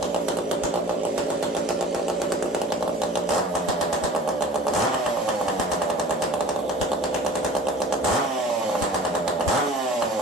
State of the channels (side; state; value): both; normal; correlation 0.44